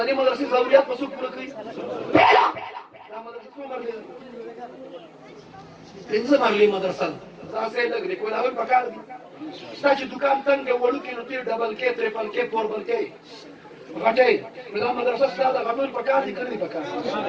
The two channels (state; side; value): identical; both; correlation 1.00